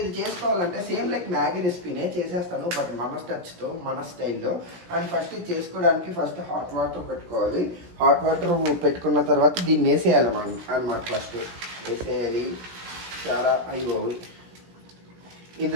చేసుకోవాలంటే సేమ్ లైక్ మ్యాగీ రెసిపీనే చేసేస్తాను, బట్ మన టచ్తో మన స్టైల్లో. అండ్ ఫస్ట్ ఇది చేసుకోవడానికి ఫస్ట్ హాట్ వాటర్ పెట్టుకోవాలి. హాట్ వాటర్ పెట్టుకున్న తర్వాత దీన్ని వేసేయాలి మనం అనమాట. ఫస్ట్ వేసేయాలి చాలా అయిపోయి.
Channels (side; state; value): left; late; 17 ms